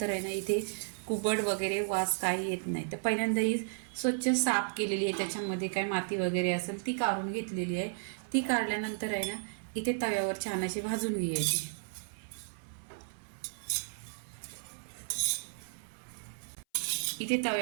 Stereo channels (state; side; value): silent; left; 55 dB below the other